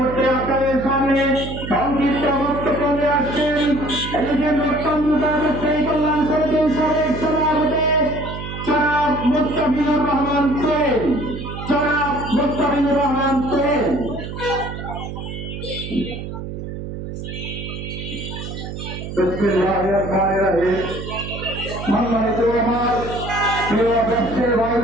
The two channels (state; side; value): noise; right; hum, 8 dB below the sound